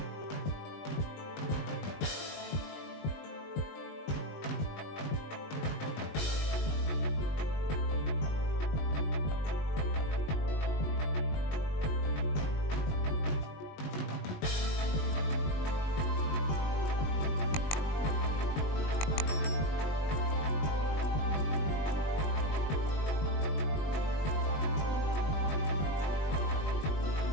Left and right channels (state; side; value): late; right; 20 ms